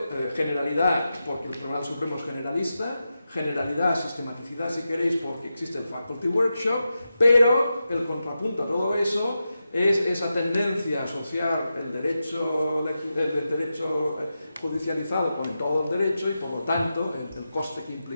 generalidad porque el Tribunal Supremo es generalista, generalidad, sistematicidad si queréis porque existe el Faculty Workshop, pero el contrapunto a todo eso es esa tendencia a asociar el derecho judicializado con todo el derecho y por lo tanto el coste que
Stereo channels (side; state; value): both; inverted; correlation -0.90